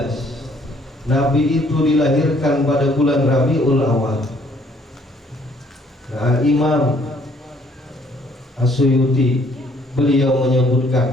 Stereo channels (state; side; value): normal; both; correlation 0.63